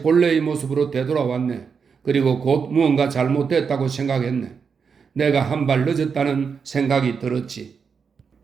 모습으로 되돌아왔네. 그리고 곧 무언가 잘못됐다고 생각했네. 내가 한 발 늦었다는 생각이 들었지.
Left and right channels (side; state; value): left; quieter; 6.0 dB